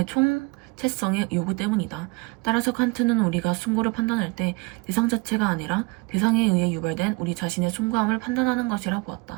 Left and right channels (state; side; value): quieter; left; 26.3 dB